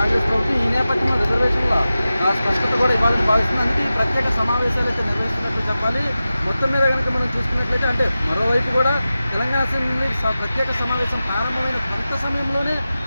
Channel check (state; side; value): inverted; both; correlation -0.94